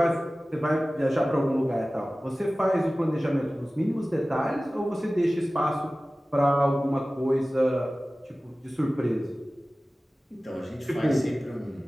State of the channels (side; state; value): both; normal; correlation 0.97